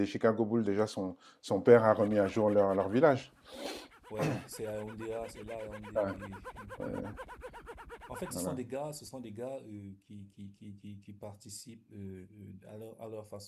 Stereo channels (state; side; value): identical; both; correlation 1.00